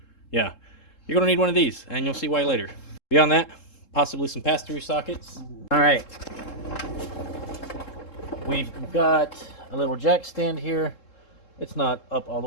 Yeah. You're going to need one of these, and you'll see why later. Beyond that, possibly some pass-through sockets. All right. We've got a little jack stand here. It's not up all the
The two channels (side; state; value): right; late; 3.7 ms